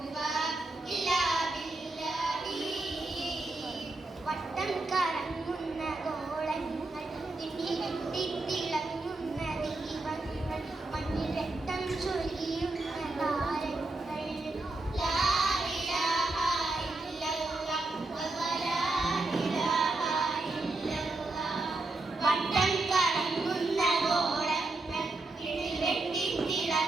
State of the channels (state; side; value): quieter; left; 3.0 dB